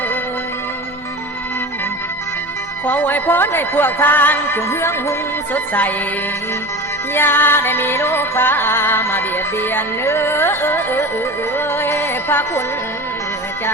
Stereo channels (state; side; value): noise; left; hum, 24 dB below the sound